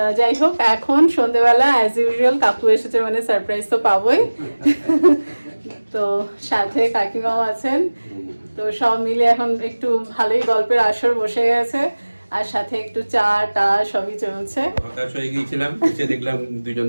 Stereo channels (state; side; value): inverted; both; correlation -1.00